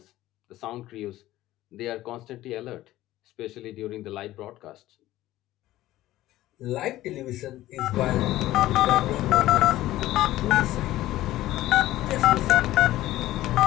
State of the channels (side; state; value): right; quieter; 15.5 dB